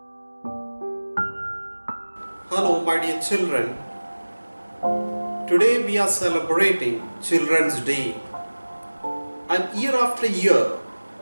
my dear children. Today we are celebrating Children's Day. And year after year,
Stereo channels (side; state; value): both; inverted; correlation -1.00